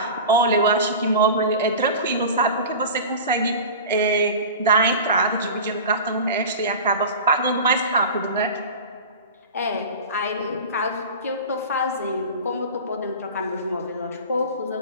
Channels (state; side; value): inverted; both; correlation -0.33